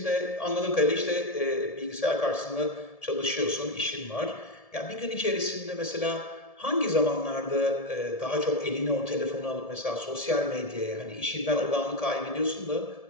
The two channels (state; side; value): late; right; 1.7 ms